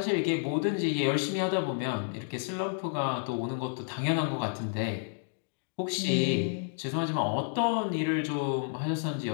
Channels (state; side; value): silent; right; digital silence